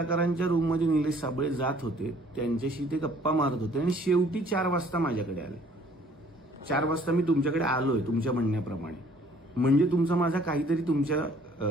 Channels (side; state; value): both; normal; correlation 0.58